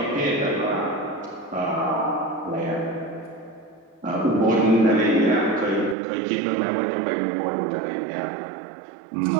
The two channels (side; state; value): left; drops out; at 6.0 s